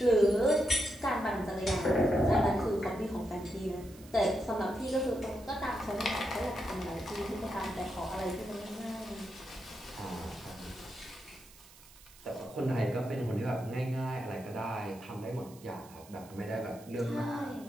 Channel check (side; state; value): right; noise; hiss, 22 dB below the sound